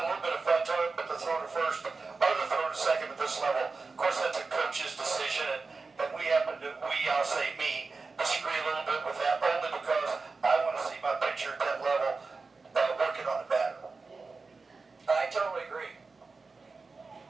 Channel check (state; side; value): quieter; left; 4.2 dB